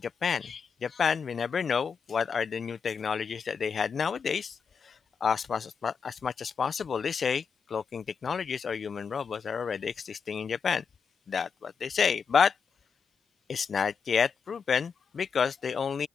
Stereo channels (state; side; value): quieter; right; 6.1 dB